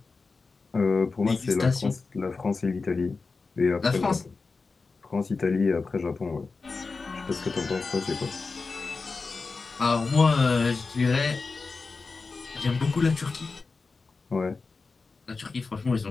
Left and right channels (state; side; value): quieter; right; 4.2 dB